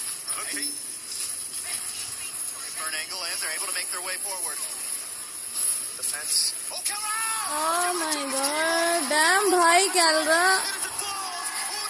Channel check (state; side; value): identical; both; correlation 1.00